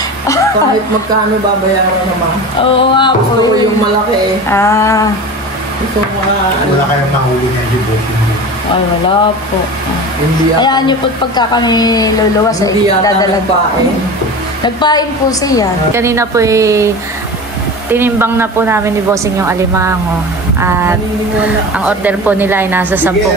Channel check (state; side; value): normal; both; correlation 0.32